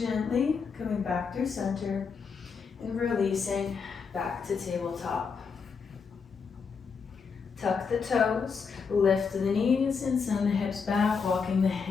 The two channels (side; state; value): right; quieter; 5.6 dB